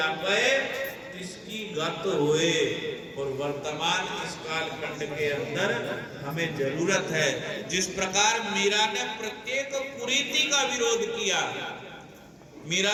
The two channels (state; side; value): identical; both; correlation 1.00